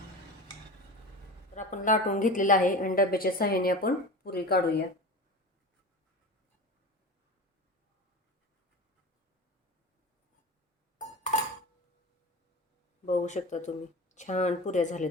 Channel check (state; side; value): normal; both; correlation 0.30